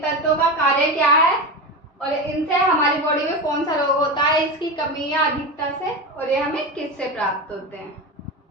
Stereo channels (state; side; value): normal; both; correlation 0.21